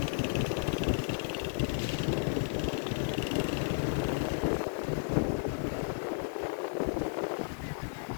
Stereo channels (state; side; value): silent; right; digital silence